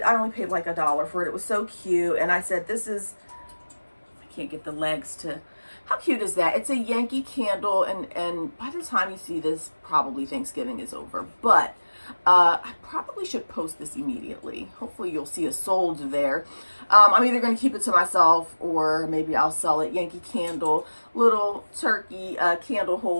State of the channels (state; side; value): inverted; both; correlation -1.00